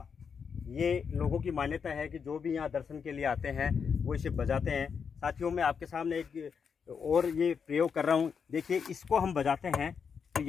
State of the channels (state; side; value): quieter; right; 6.4 dB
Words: ये लोगों की मान्यता है कि जो भी यहाँ दर्शन के लिए आते हैं वो इसे बजाते हैं। साथियों मैं आपके सामने एक और ये प्रयोग कर रहा हूँ। देखिए, इसको हम बजाते हैं तो